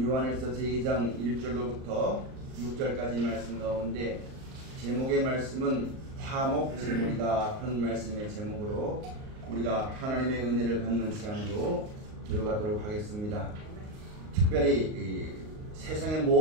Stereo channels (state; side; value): late; left; 38 ms